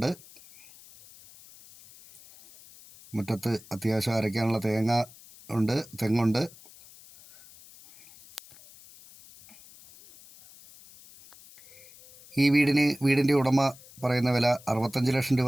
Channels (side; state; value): left; noise; hiss, 22 dB below the sound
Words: മുറ്റത്ത് അത്യാവശ്യം അരയ്ക്കാനുള്ള തെങ്ങുണ്ട്. ഈ വീടിൻ്റെ ഉടമ പറയുന്ന വില 65 ലക്ഷം